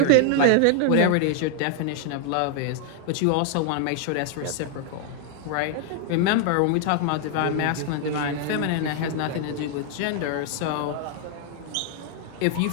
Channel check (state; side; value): different; both; correlation 0.00